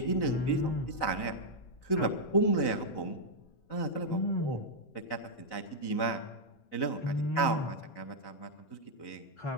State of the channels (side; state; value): right; late; 4.0 ms